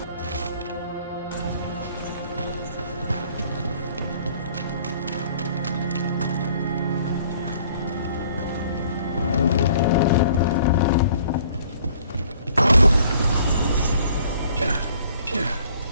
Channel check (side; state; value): both; inverted; correlation -0.57